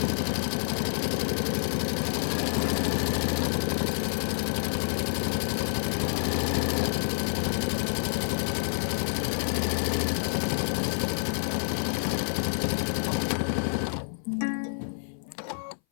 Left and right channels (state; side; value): silent; right; 58 dB below the other